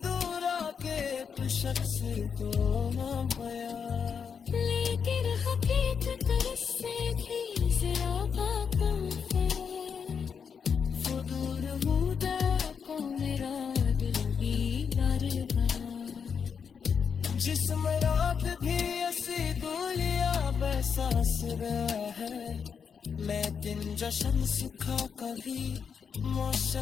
दूरा के तो शख्स को ना पाया। लेकिन हकीकत से भी ज़्यादा कम है, फुदूर हुदा को मेरा दिल बीमार बना। जिसम रात भी ऐसी दूलिया बहसास रहा है, मैं दिन जश्न सुखा कभी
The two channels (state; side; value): quieter; right; 6.6 dB